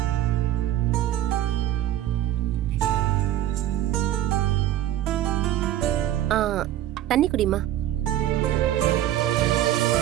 ஆ, தண்ணி குடிமா.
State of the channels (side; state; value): left; quieter; 12.7 dB